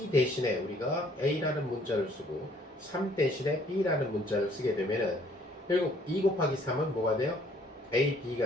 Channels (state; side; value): normal; both; correlation 0.61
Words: 대신에 우리가 A라는 문자를 쓰고 3 대신에 B라는 문자를 쓰게 되면은 결국 2 곱하기 3은 뭐가 돼요?